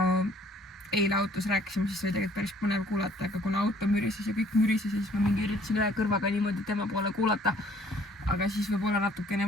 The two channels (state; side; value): normal; both; correlation 0.58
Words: eile autos rääkisime, siis oli tegelikult päris põnev kuulata, aga kuna auto mürises ja kõik mürises, siis ma mingi üritasin ühe kõrvaga niimoodi tema poole kuulata. Aga siis võib-olla natukene